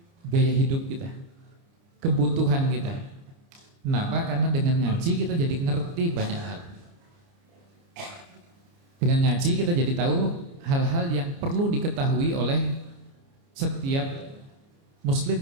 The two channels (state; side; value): late; left; 29 ms